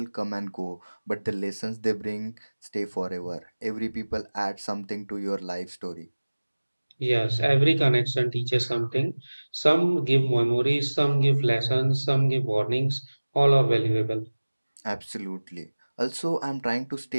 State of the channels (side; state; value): both; inverted; correlation -1.00